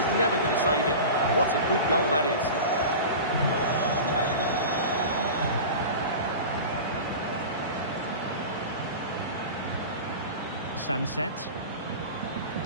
never going to save it. What a good goal that is. Sunset.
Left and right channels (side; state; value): both; inverted; correlation -0.31